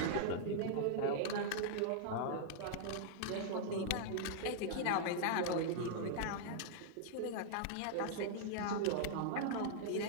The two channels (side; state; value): both; different; correlation -0.01